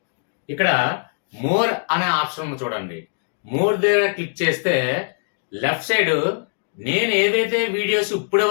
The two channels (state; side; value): silent; right; digital silence